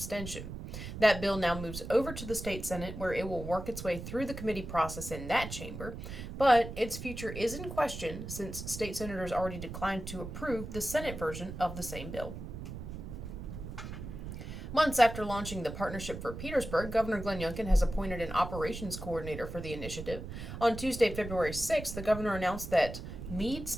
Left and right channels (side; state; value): right; noise; rumble, 8 dB below the sound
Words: That bill now moves over to the state Senate, where it will work its way through the committee process in that chamber, but its future is in question since state senators already declined to approve the Senate version of the same bill. Months after launching the Partnership for Petersburg, Governor Glenn Youngkin has appointed an operations coordinator for the initiative. On Tuesday, February 6th, the governor announced that Meade